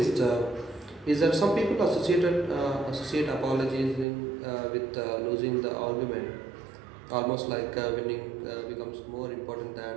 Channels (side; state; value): left; drops out; at 4.0 s